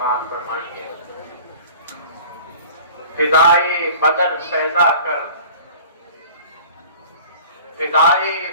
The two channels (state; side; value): inverted; both; correlation -0.44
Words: فرمائیے. فضائے بدر پیدا کر فضائے